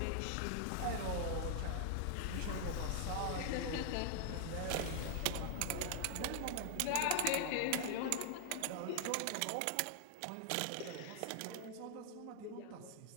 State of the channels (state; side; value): different; both; correlation 0.00